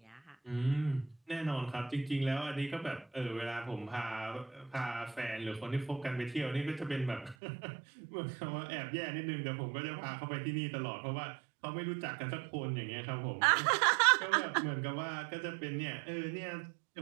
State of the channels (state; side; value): drops out; left; at 7.4 s